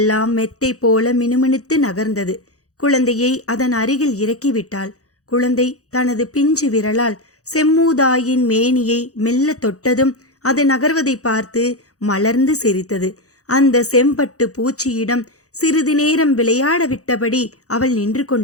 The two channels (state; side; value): late; right; 0.66 ms